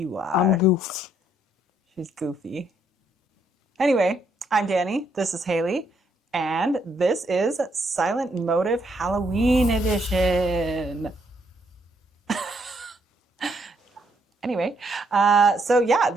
I'm Goof. She's goofy. Anyway, I'm Danny. This is Haley. And this is Silent Motive Halloween Edition. Anyway,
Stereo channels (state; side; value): normal; both; correlation 0.72